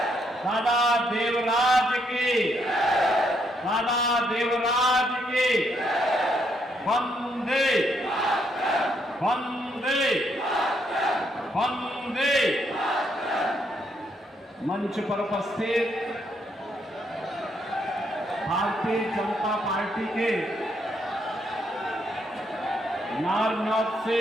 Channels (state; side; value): normal; both; correlation 0.74